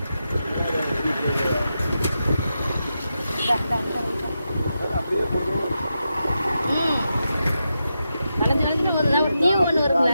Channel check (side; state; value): both; inverted; correlation -0.88